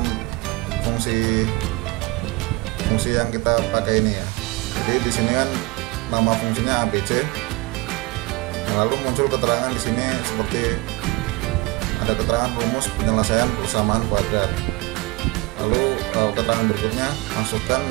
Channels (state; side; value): quieter; left; 23.3 dB